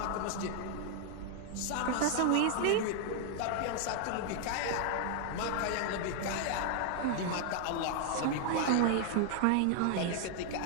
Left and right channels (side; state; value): both; different; correlation 0.00